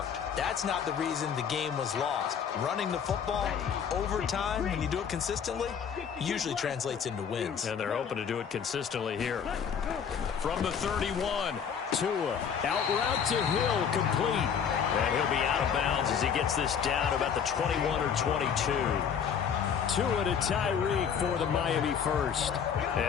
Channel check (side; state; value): right; quieter; 7.4 dB